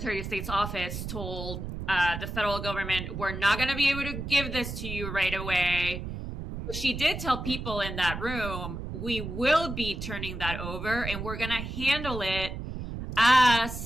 of State's office told the federal government, we're not going to be able to give this to you right away. She did tell people in that room, we will be turning that over, and we're going to handle it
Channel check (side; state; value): right; noise; rumble, 6 dB below the sound